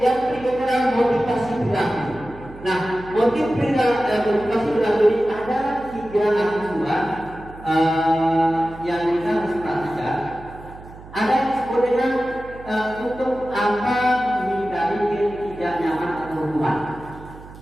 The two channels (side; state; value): right; noise; hum, 18 dB below the sound